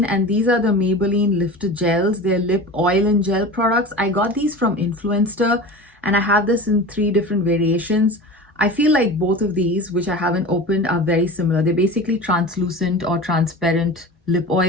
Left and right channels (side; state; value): both; normal; correlation 0.33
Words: and these are the Maybelline Lifter Gels. They're lip oil and gel products. I got these from Influencer, and I have this in 3 different variations. I feel like both of these, which I haven't opened, are very similar. They're basically translucent or transparent lip